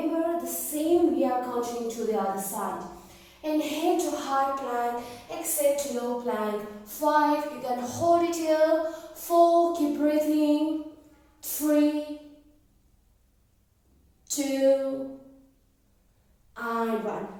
the same we are continuing to the other side. Inhale to high plank. Exhale to low plank. 5, you can hold it here. 4, keep breathing. 3, 2, and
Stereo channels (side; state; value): both; identical; correlation 1.00